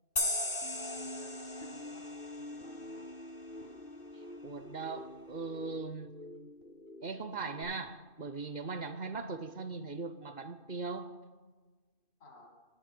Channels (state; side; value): late; right; 2.7 ms